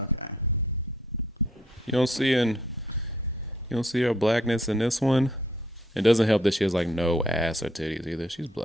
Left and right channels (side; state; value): both; normal; correlation 0.67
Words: okay. You don't see her blackness in this one. It doesn't help that she has like no ass or titties either. She's